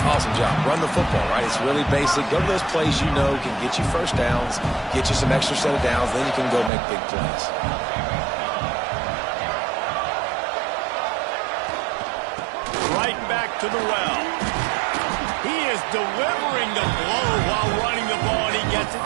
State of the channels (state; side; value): drops out; left; at 6.7 s